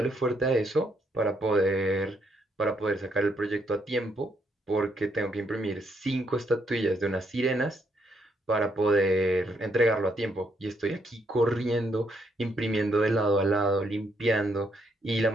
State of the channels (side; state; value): both; normal; correlation 0.74